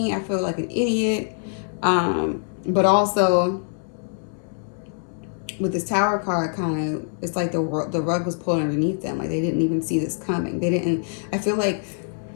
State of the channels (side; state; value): right; silent; 63 dB below the other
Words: I feel like an idiot. But also with this Tower card, kind of, it's like the rug was pulled underneath them. Like they didn't even see this coming. They didn't. I feel like